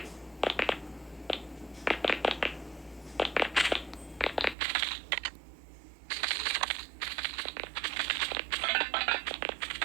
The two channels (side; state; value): left; drops out; at 4.5 s